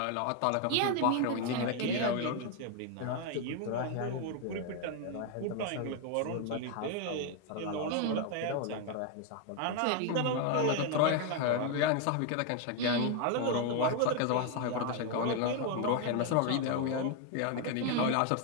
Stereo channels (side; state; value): both; different; correlation 0.01